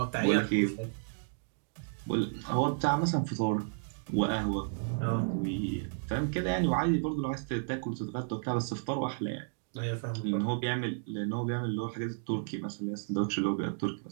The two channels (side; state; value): left; silent; digital silence